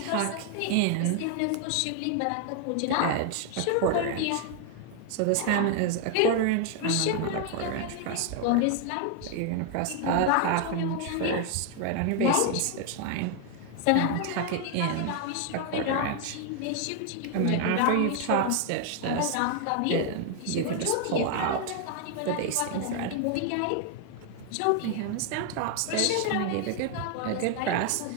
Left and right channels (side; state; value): both; different; correlation 0.00